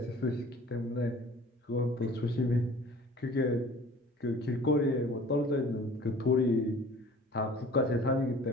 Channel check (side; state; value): both; normal; correlation 0.47